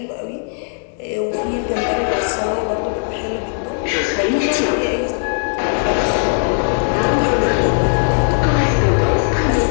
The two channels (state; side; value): silent; right; 63 dB below the other